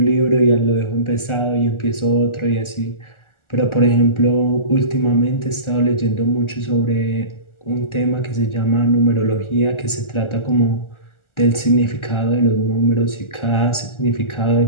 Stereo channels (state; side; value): late; right; 1.4 ms